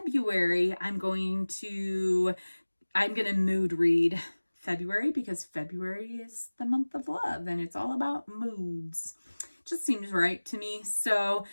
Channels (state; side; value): inverted; both; correlation -1.00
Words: I'm going to mood read February because February is the month of love and it's all about moods. Just seems right to me. So